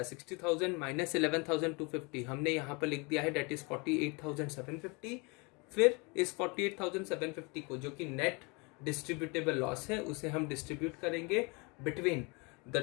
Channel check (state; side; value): quieter; right; 29.4 dB